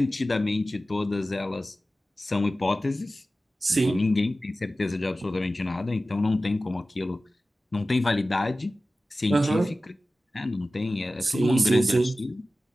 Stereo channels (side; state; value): both; normal; correlation 0.95